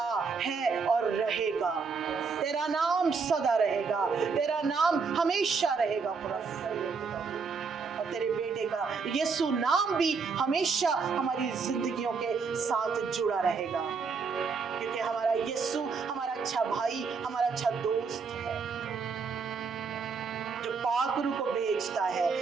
है और रहेगा। तेरा नाम सदा रहेगा, तेरा नाम हमेशा रहेगा खुदा। और तेरे बेटे का यीशु नाम भी हमेशा हमारी जिंदगियों के साथ जुड़ा रहेगा, क्योंकि हमारा यीशु हमारा अच्छा भाई, हमारा अच्छा दोस्त है, जो पाकरू को भेजता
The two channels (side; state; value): left; quieter; 5.1 dB